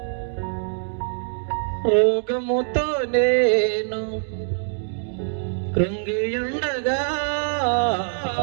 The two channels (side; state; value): left; silent; digital silence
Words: రోగముతో నేను కృంగియుండగా